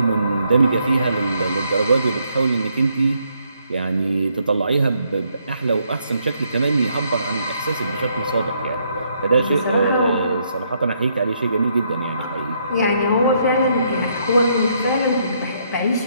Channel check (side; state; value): both; inverted; correlation -0.73